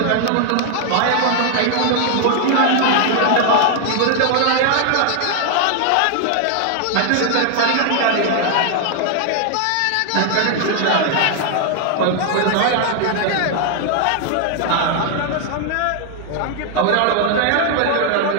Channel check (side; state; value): both; different; correlation 0.00